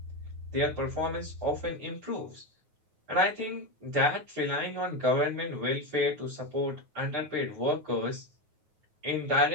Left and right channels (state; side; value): late; left; 9.4 ms